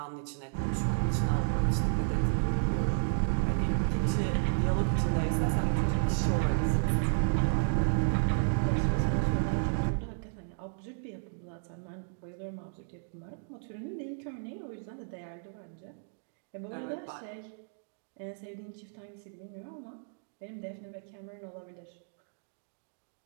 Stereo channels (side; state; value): left; silent; digital silence